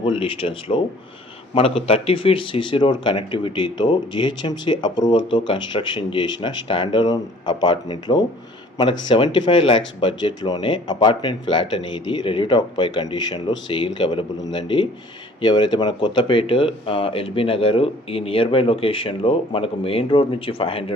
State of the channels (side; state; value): both; normal; correlation 0.53